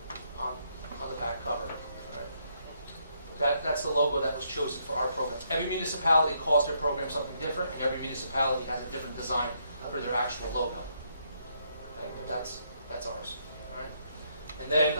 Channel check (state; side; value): inverted; both; correlation -0.73